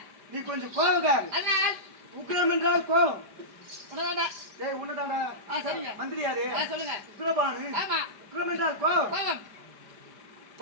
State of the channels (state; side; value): late; left; 4.9 ms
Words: நீ கொஞ்சம் கோவக்காரு. அதனால் உக்ரம் என்றால் கோவம். உன்னதாண்டா. டேய் உன்னதாண்டா. சரிங்க. மந்திரியாரு. சொல்லுங்க. உக்ரபானு. ஆமா. உக்ரம் என்றால் கோவம். கோவம்.